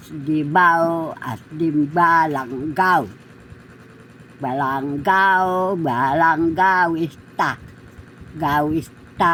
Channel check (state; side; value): identical; both; correlation 1.00